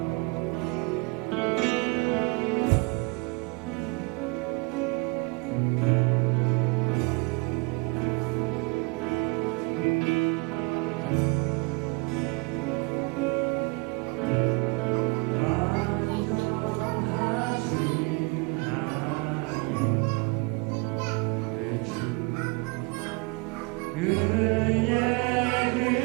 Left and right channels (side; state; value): left; quieter; 28.9 dB